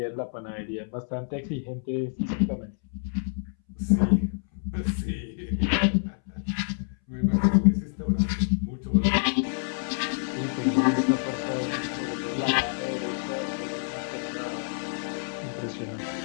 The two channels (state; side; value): silent; right; 60 dB below the other